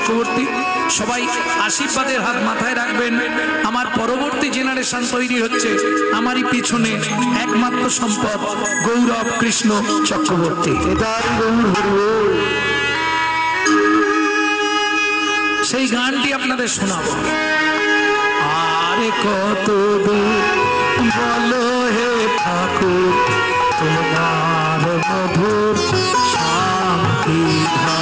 সবাই আশীর্বাদের হাত মাথায় রাখবেন। আমার পরবর্তী জেনারেশন তৈরি হচ্ছে, আমারই পিছনে একমাত্র সম্পদ গৌরব কৃষ্ণ চক্রবর্তী। সেই গানটি আপনাদের শোনাবো। আরে কত দূর বলো হে ঠাকুর তোমার মধুর শান্তি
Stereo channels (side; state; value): both; identical; correlation 1.00